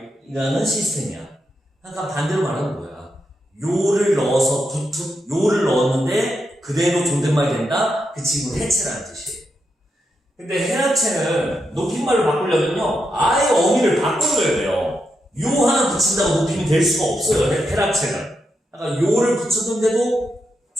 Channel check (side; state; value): both; normal; correlation 0.84